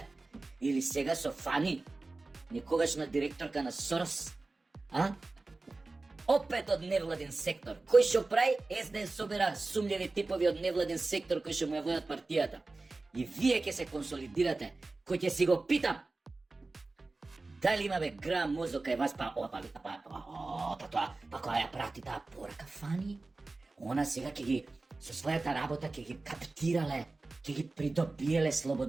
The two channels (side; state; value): left; quieter; 3.4 dB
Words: Или сега со Фани, некогашна директорка на Сорос? А? Опет од невладен сектор. Кој што прави? СДС собира сумљеви типови од невладен сектор кои што му ја водат партијата. И вие ќе се консолидирате. Кој ќе си го питам, дали има бе грам мозок кај вас, па која ја прати таа порака Фани? Она сега ќе ги, со својата работа ќе ги каптирале, ќе ги придобиеле